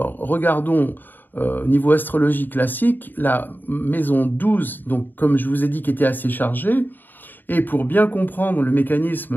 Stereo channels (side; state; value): right; late; 0.091 ms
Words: regardons au niveau astrologie classique, la maison 12, donc comme je vous ai dit, qui était assez chargée. Et pour bien comprendre le